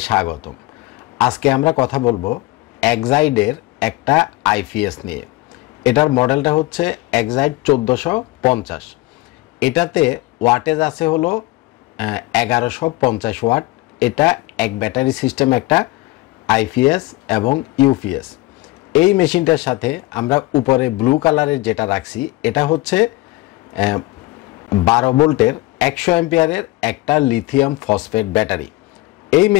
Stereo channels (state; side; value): quieter; right; 20.2 dB